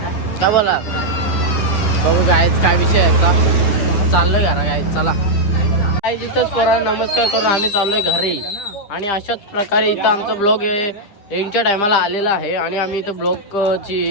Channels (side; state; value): right; late; 10 ms